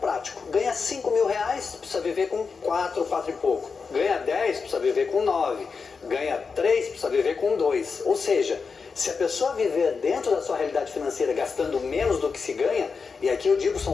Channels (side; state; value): right; quieter; 5.1 dB